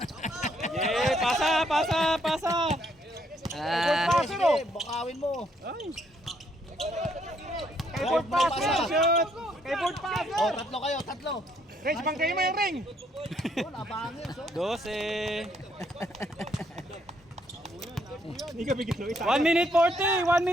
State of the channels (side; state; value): both; normal; correlation 0.71